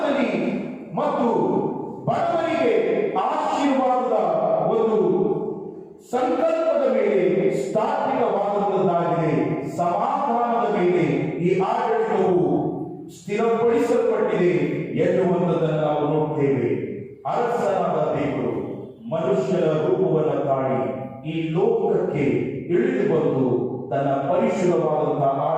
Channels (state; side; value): identical; both; correlation 1.00